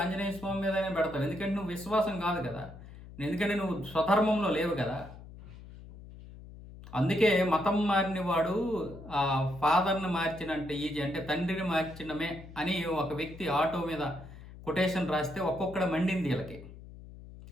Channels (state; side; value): noise; left; hum, 16 dB below the sound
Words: స్వామి మీదైనా పెడతావు. ఎందుకంటే నువ్వు విశ్వాసం కాదు కదా, ఎందుకంటే నువ్వు స్వధర్మంలో లేవు కదా. అందుకే మతం మారిన వాడు ఆ ఫాదర్ని మార్చినంటే ఈజీ, అంటే తండ్రిని మార్చినమే అని ఒక వ్యక్తి ఆటో మీద కొటేషన్ రాస్తే ఒక్కొక్కడ మండింది. వీళ్ళకి